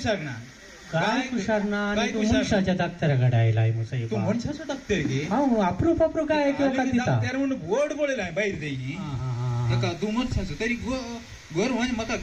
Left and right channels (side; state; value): both; identical; correlation 1.00